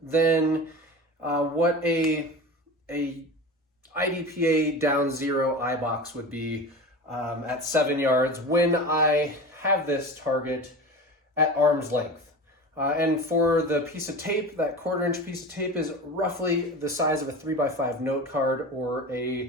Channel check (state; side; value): normal; both; correlation 0.31